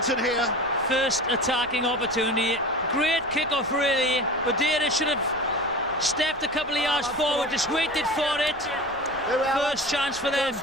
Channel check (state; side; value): noise; left; rumble, 22 dB below the sound